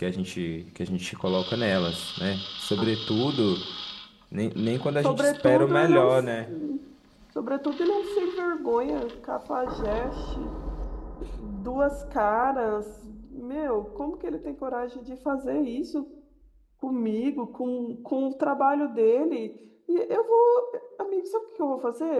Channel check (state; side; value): identical; both; correlation 1.00